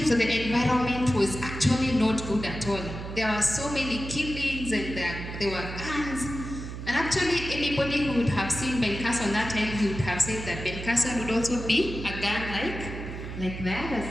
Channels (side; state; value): right; noise; hum, 8 dB below the sound